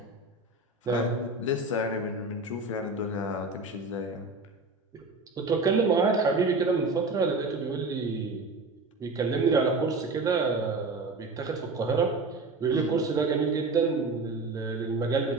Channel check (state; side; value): quieter; left; 3.3 dB